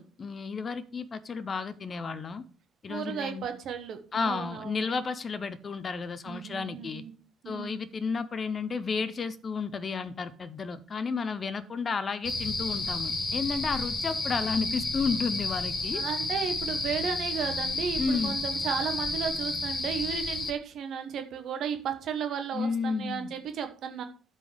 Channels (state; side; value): normal; both; correlation 0.76